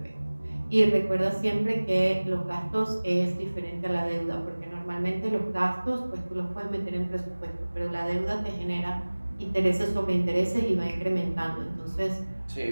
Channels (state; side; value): inverted; both; correlation -1.00